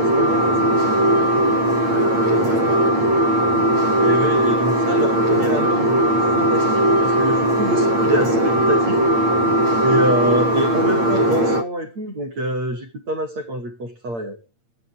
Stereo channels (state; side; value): late; left; 8.7 ms